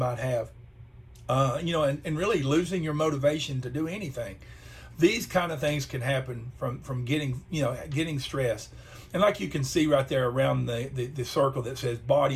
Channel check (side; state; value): both; identical; correlation 1.00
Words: have, and really losing your motivation to do anything. these kind of things can happen from getting stressed. And like you can see right there around the circle that says